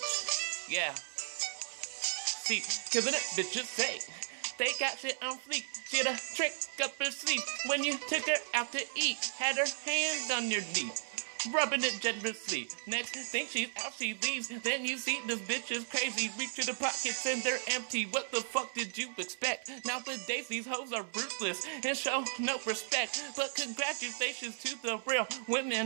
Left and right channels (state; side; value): silent; left; 54 dB below the other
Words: Yeah. See, killing it, bitches say. They got shit on fleek. She had a trick up her sleeve. When you took her out to eat, had her hand on your knee, rubbing it generously. Next thing she's out, she leaves. Then you see this bitch is crazy. Reach to the pockets and they're empty. What the fuck did you expect? Nowadays these hoes are ruthless and show no respect. But congratulations to the real women